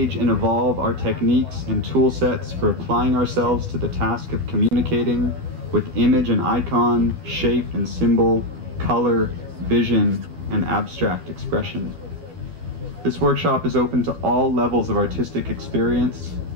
and evolve our techniques and tool sets for applying ourselves to the task of communicating with image and icon, shape and symbol, color, vision, and abstract expression. This workshop is open to all levels of artistic experience.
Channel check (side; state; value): left; late; 12 ms